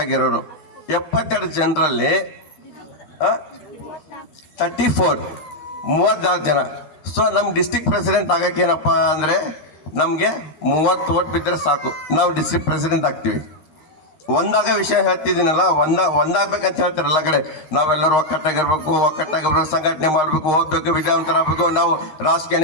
ಆಗಿರೋರು. 72 ಜನರಲ್ಲಿ 34 ಜನ. ಸೊ ನಮ್ಮ ಡಿಸ್ಟ್ರಿಕ್ಟ್ ಪ್ರೆಸಿಡೆಂಟ್ ಆಗಕ್ಕೆ ಏನಪ್ಪ ಅಂದರೆ ನಮಗೆ 30 ಓಟ್ ಬಿದ್ದರೆ ಸಾಕು, ನಾವು ಡಿಸ್ಟ್ರಿಕ್ಟ್ ಪ್ರೆಸಿಡೆಂಟ್ ಆಗ್ತೀವಿ. ಒಂದಾಗ ವಿಷಯ ಹೇಳ್ತಿದ್ದೀನಲ್ಲ, ಒಂದಾಗಬೇಕಂತ ಹೇಳ್ತಾರೆ ಎಲ್ಲ ಕಡೆ. ನಾವೆಲ್ಲರೂ ಒಕ್ಕಟ್ಟಾಗಿರ್ಬೇಕು, ಸಂಘಟನೆ ಮಾಡಬೇಕು, ಓದಬೇಕು, ವಿದ್ಯಾವಂತರಾಗಬೇಕು, ನಾವು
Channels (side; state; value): right; late; 13 ms